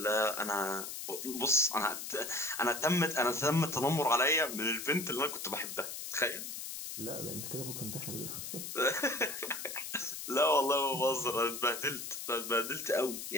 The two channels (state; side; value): noise; left; hiss, 7 dB below the sound